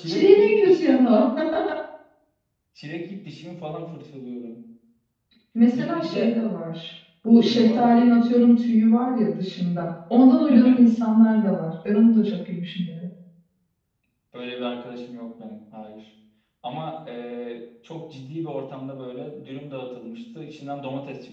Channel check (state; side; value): identical; both; correlation 1.00